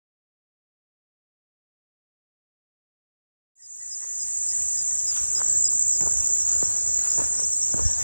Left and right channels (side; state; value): both; inverted; correlation -0.96